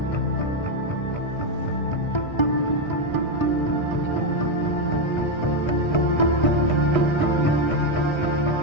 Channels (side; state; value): right; late; 1.3 ms